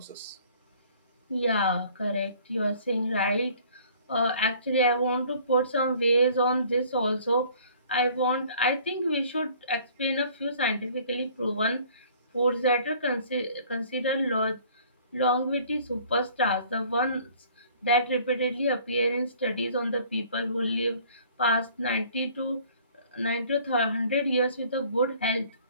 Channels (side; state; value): both; inverted; correlation -0.54